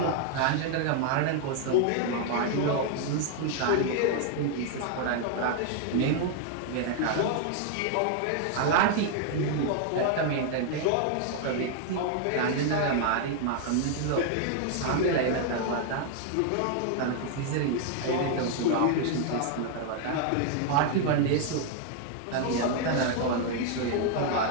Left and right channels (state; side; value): different; both; correlation 0.00